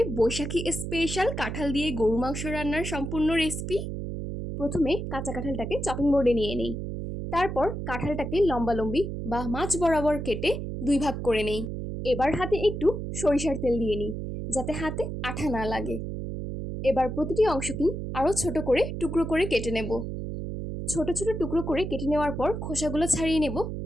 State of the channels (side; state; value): right; noise; hum, 5 dB below the sound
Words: বৈশাখী স্পেশাল কাঁঠাল দিয়ে গরু মাংস রান্নার সম্পূর্ণ রেসিপি। প্রথমে কাঁচা কাঁঠালটাকে চপিং বোর্ডে নিয়ে নেই। তারপর কাঁঠালটাকে লম্বালম্বি বা মাঝ বরাবর কেটে দুই ভাগ করে নেই। এবার হাতে একটু সরিষার তেল দিয়ে নিই, যাতে হাতে আঠা না লাগে। এবার প্রতিটি অংশকেই আরও ছোট করে টুকরো করে কেটে নেব। ছোট ছোট টুকরো করে কেটে নেওয়ার পর খোসাগুলো ছাড়িয়ে নেব,